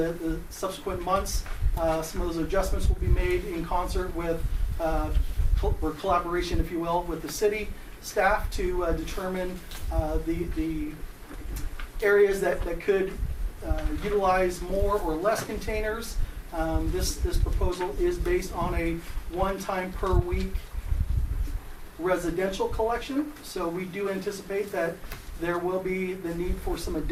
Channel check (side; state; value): both; identical; correlation 1.00